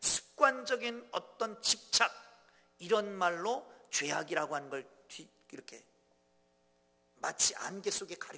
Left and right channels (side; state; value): both; identical; correlation 1.00